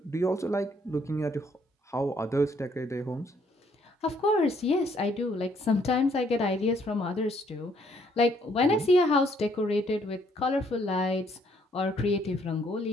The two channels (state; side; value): normal; both; correlation 0.67